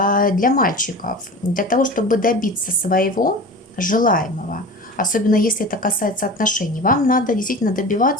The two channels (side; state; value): both; normal; correlation 0.34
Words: мальчиков, для того, чтобы добиться своего желаемого, особенно если это касается отношений, вам надо действительно